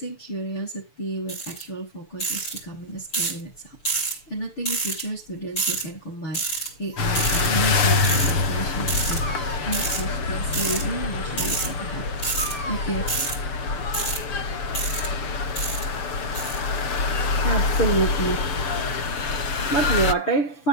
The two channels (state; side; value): late; right; 6.9 ms